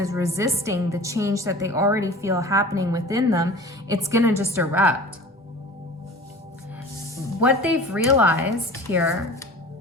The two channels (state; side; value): normal; both; correlation 0.40